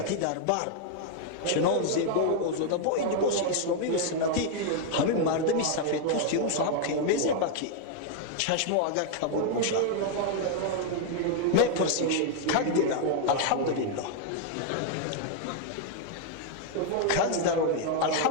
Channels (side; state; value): both; different; correlation 0.00